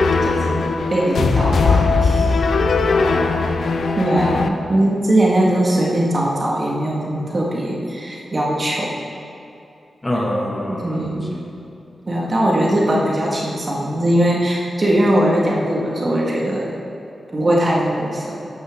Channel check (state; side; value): normal; both; correlation 0.88